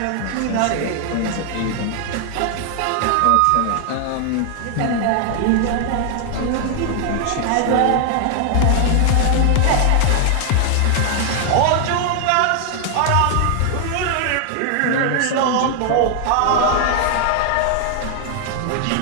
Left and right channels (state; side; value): different; both; correlation 0.00